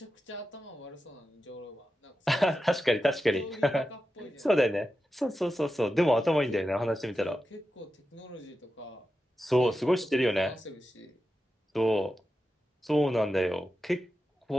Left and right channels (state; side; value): normal; both; correlation 0.91